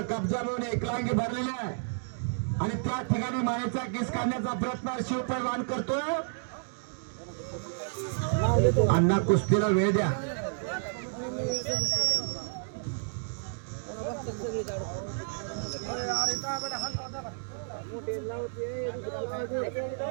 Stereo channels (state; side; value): silent; left; digital silence